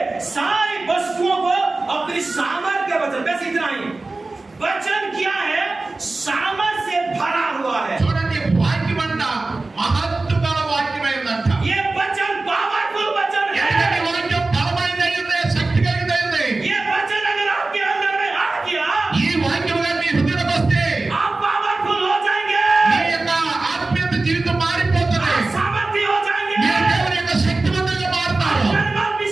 सारी वस्तुओं को अपनी सामर्थ्य के वचन, बस इतना ही। वचन क्या है? सामर्थ्य से भरा हुआ है। చూడండి, వాక్యం అంట మహత్తు గల వాక్యమైందంట. ये वचन पावरफुल वचन ఎందుకంటే है। వాక్యం బలమైనది, శక్తి కలిగినది. ये वचन अगर आपके अंदर में आ गया, ఈ వాక్యం గాని మీ హృదయంలోకి వస్తే आप पावरफुल हो जाएंगे, మీ యొక్క ఆత్మీయ జీవితం మారిపోతుంది. आप सामर्थ्य हो जाएंगे, మీరు దేవుని యొక్క శక్తివంతంగా మారుతారు. आप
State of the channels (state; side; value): quieter; left; 3.3 dB